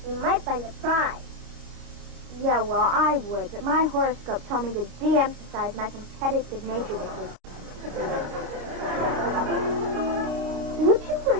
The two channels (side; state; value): left; late; 26 ms